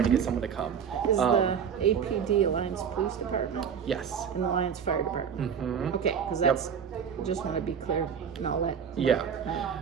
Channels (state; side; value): quieter; left; 7.4 dB